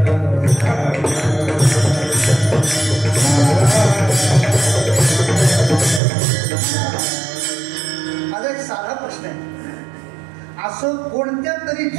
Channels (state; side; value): drops out; left; at 6.0 s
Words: माझा एक साधा प्रश्न आहे, असं कोणत्या तरी